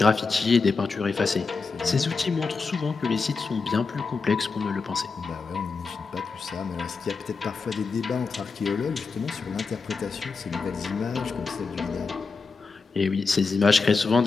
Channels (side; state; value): right; quieter; 4.5 dB